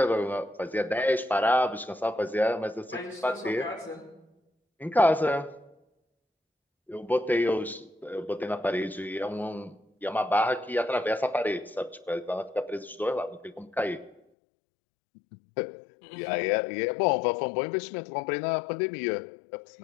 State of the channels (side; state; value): right; drops out; at 14.2 s